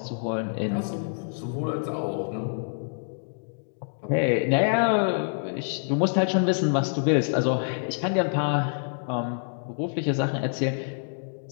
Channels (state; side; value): silent; right; digital silence